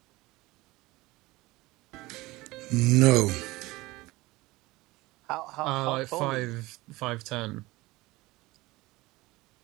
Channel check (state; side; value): quieter; left; 20.6 dB